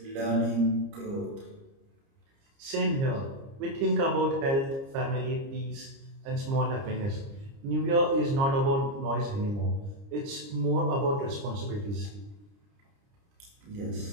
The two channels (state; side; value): late; left; 30 ms